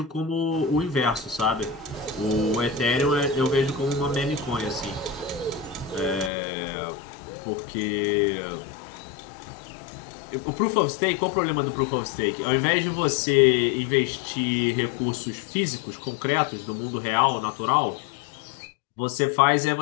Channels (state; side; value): drops out; right; at 6.3 s